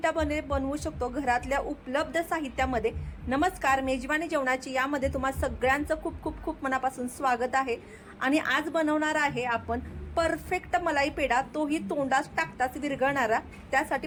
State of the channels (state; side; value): identical; both; correlation 1.00